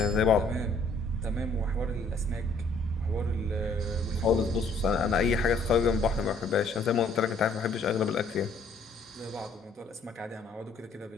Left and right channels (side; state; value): right; quieter; 3.1 dB